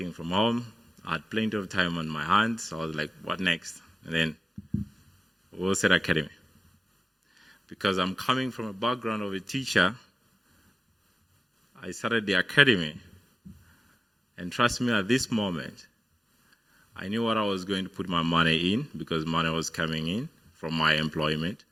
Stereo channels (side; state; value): both; normal; correlation 0.96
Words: from home. I had plenty of time on my hands, so I was like, what next? And then Wheelset Academy. Because I'm coming from a background of a teacher, I started the academy. And trust me, at this moment, I knew what I was going to put my money in because money was coming in from my employment.